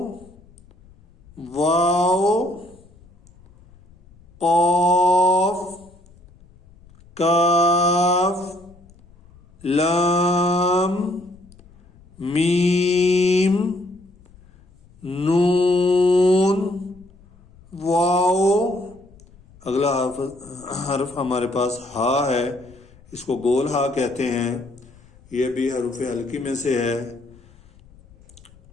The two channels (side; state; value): left; noise; rumble, 26 dB below the sound